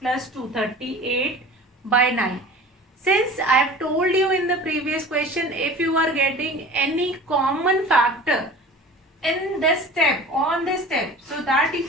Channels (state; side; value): normal; both; correlation 0.40